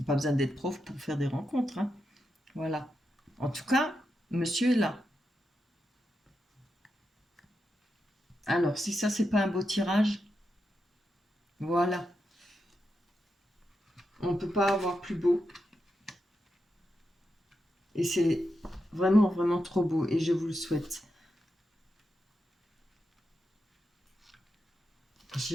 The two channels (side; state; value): both; normal; correlation 0.87